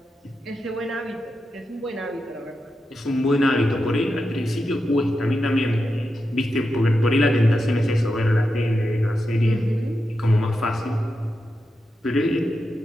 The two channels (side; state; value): both; normal; correlation 0.88